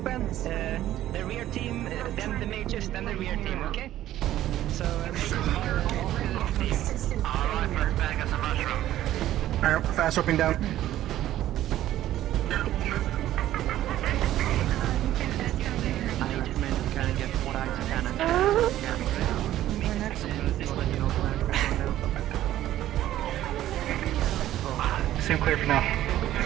The rear team, then the mages, then the rear team, okay? So, alright, first back as a mushroom. Alright, fast roping down. Seem clear for now. I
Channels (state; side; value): quieter; left; 13.3 dB